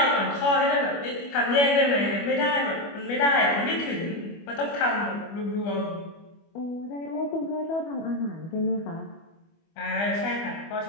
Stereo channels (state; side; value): late; right; 25 ms